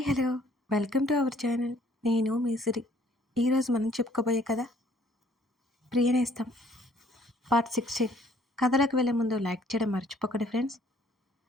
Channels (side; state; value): both; normal; correlation 0.60